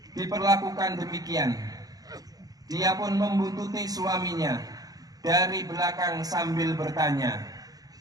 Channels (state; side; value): late; left; 0.18 ms